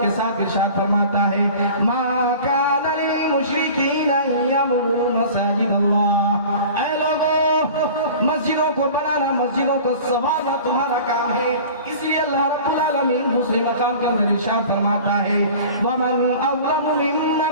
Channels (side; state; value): both; inverted; correlation -0.41